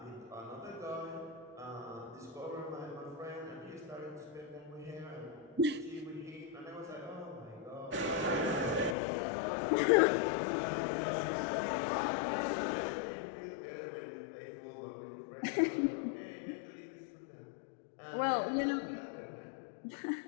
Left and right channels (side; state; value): right; drops out; at 9.0 s